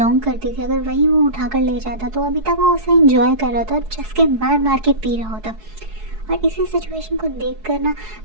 करती थी अगर वही वो उठाकर ले जाता तो अभी तक वो उसे इंजॉय कर रहा था और चस्के मार मार के पी रहा होता। और इसी सिचुएशन को देख कर ना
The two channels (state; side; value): late; left; 4.7 ms